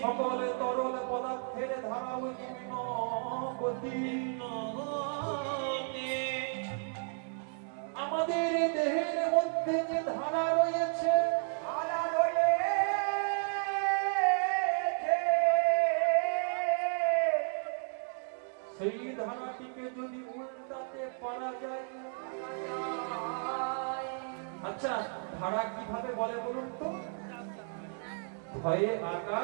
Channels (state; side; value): silent; left; 56 dB below the other